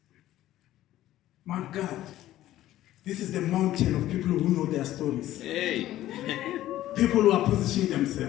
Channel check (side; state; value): right; quieter; 14.1 dB